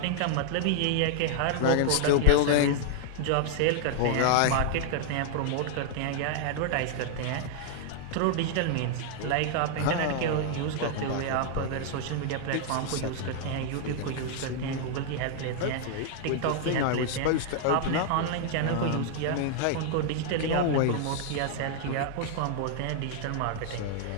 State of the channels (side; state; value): both; different; correlation -0.01